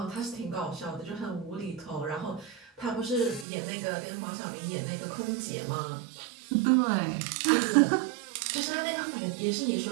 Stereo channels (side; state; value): left; drops out; at 3.5 s